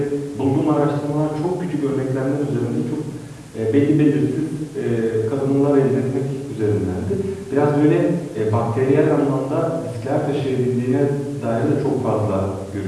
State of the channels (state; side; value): identical; both; correlation 1.00